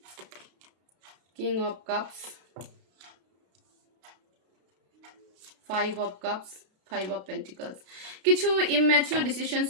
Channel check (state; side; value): late; left; 32 ms